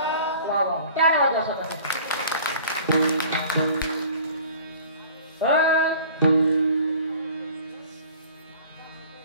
वा वा टाळ्या वाजवा स्वतः.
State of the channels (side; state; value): both; inverted; correlation -0.47